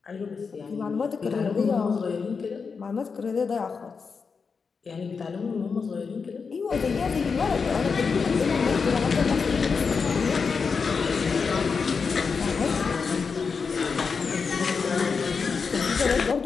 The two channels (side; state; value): right; quieter; 5.3 dB